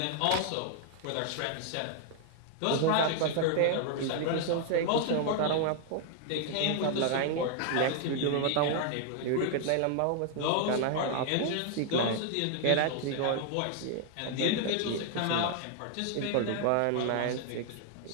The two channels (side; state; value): both; different; correlation 0.00